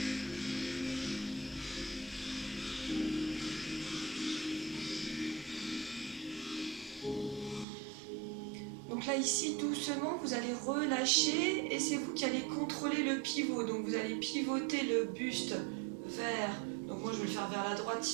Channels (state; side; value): drops out; left; at 7.7 s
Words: Donc là ici doucement vous allez relâcher et c'est vous qui allez contrôler le pivot. Donc vous allez pivoter le buste vers, donc moi je vais le faire vers la droite